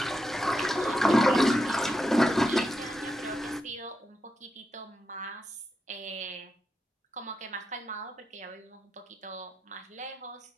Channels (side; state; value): both; normal; correlation 0.87